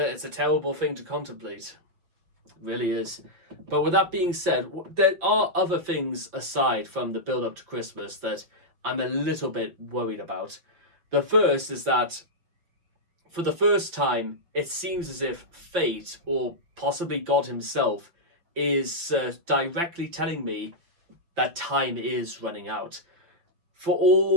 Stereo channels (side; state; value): left; late; 5.8 ms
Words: terrible thing to contemplate. It really is. But with that being said, there are other things aside from the build up to Christmas that I'm a little bit worried about. The first is that for the first time, it seems as if fate, or possibly God himself, is directly telling me that time is running out. For